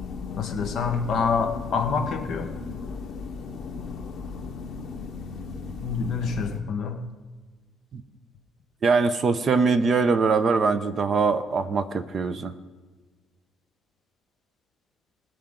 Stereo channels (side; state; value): both; normal; correlation 0.69